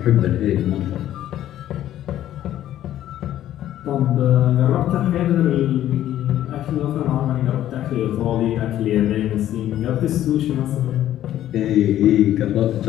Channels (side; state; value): right; quieter; 12.4 dB